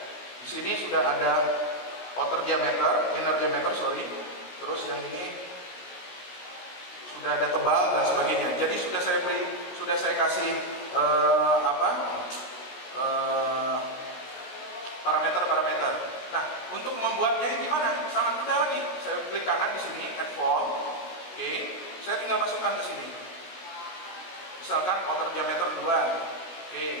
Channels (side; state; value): right; late; 16 ms